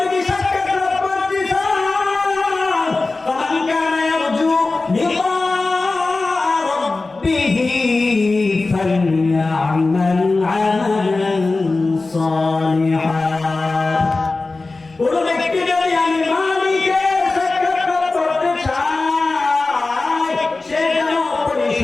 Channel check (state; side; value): quieter; right; 3.5 dB